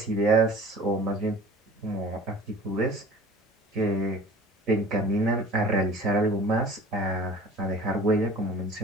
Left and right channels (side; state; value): both; normal; correlation 0.44